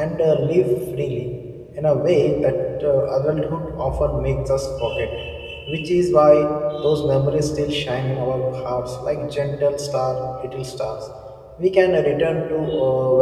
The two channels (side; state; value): both; identical; correlation 1.00